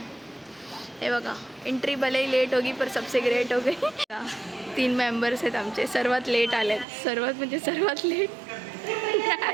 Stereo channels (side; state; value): left; drops out; at 6.9 s